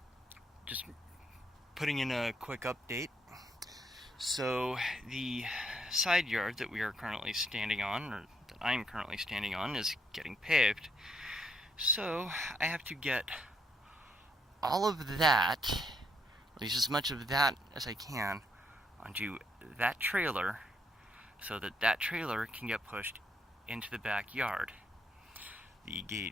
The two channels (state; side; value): normal; both; correlation 0.74